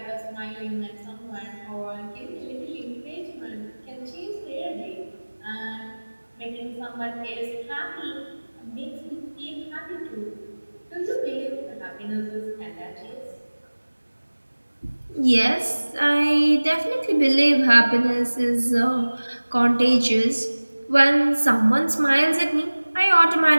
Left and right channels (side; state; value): both; inverted; correlation -1.00